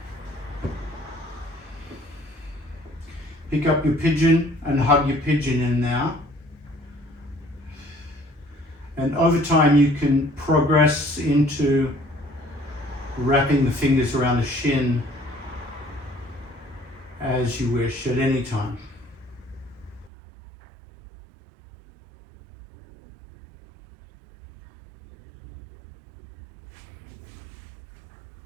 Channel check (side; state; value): left; drops out; at 20.1 s